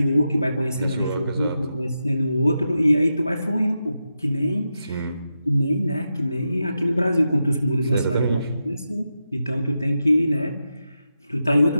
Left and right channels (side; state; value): both; inverted; correlation -0.88